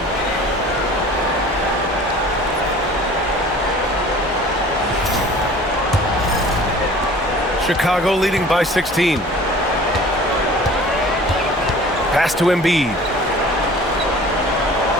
Chicago leading by 16. Pass to Embiid.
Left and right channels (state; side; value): normal; both; correlation 0.45